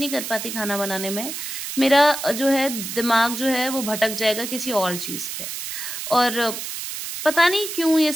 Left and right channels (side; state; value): right; noise; hiss, 6 dB below the sound